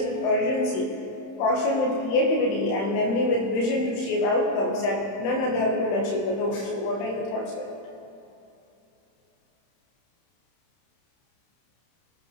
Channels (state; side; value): late; right; 31 ms